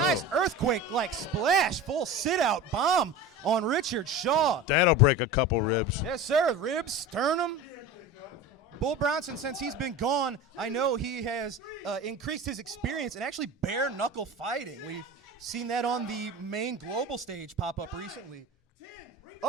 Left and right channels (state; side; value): normal; both; correlation 0.32